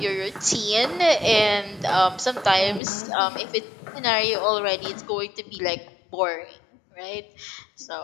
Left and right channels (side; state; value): right; drops out; at 2.8 s